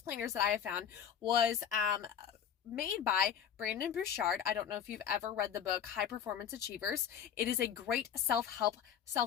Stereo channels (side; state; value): right; quieter; 8.8 dB